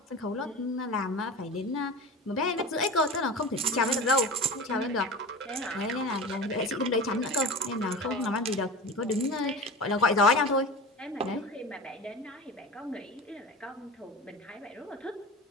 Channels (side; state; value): both; normal; correlation 0.32